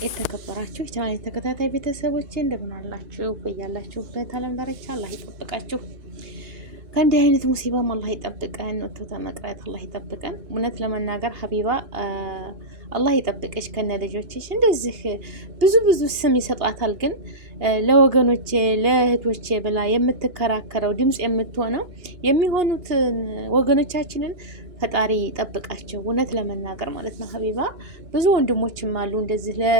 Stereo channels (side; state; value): left; late; 2.8 ms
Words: የተከበራችሁ የቻናሌ ተከታታይ ቤተሰቦቼ እንደምን አላችሁ? በያላችሁበት ዓለም ዳርቻ አላህ ይጠብቃችሁ። ከእንዲህ አይነት ሙሲባም አላህ ይጠብቀን። ወጥቶ ተመቅረት አላህ ይጠብቀን። እውነት ለመናገር ሀቢባ አላህ ይጠብቅሽ ከነ ልጆችሽ። እንደዚህ ብዙ ስም ይሰጣታል፣ ግን ለወገኖቼ ለእህቶቼ ብላ የምትከራከረው ድምጽ የምትሆነው የሚሆኑት ወገኖቻችንን ፈጣሪ ጠብቃቸው። እውነት ለመናገር ማለት ነው። ሀቢባ ብዙ ወንድሞችም አሉ እንደዚህ